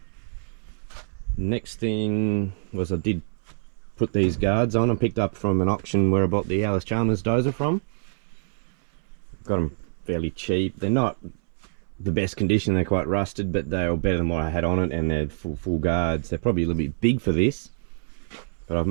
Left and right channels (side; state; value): left; silent; 60 dB below the other